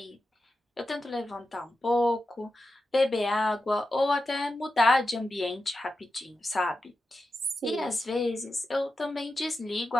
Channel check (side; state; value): both; normal; correlation 0.90